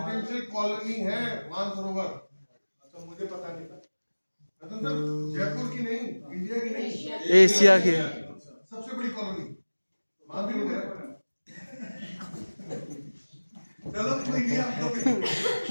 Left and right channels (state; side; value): inverted; both; correlation -1.00